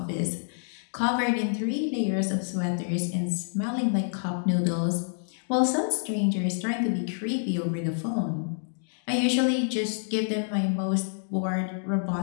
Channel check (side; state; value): right; silent; digital silence